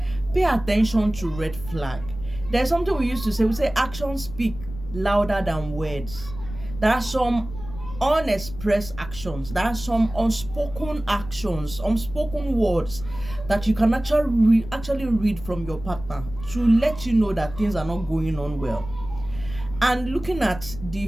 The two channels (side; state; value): left; noise; rumble, 13 dB below the sound